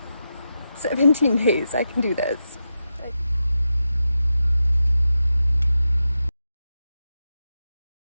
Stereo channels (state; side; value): inverted; both; correlation -0.89